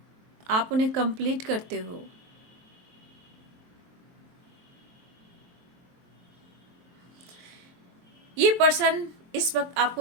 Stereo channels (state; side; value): late; left; 23 ms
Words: आप उन्हें कंप्लीट करते हो। ये पर्सन इस वक्त